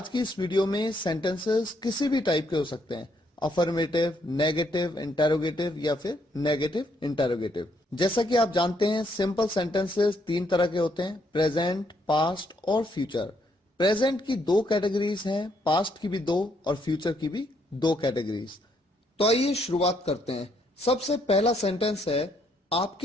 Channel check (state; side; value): normal; both; correlation 0.72